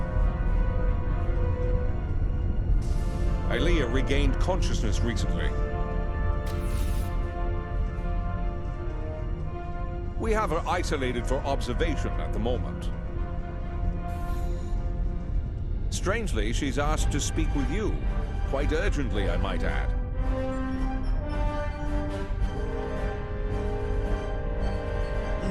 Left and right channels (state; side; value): identical; both; correlation 1.00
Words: Ilea regained consciousness recently. We have her isolated for observation at the moment. Strangely, she's asked to speak with you. Quite urgently, I might add.